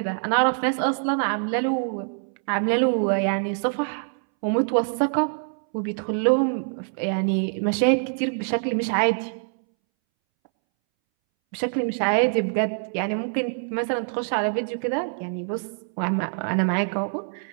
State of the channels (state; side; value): silent; left; 62 dB below the other